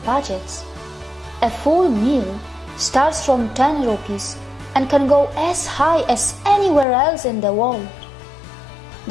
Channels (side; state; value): right; drops out; at 6.9 s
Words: budgets. A full meal starts from 10 rupees and can go as high as anywhere else in the world.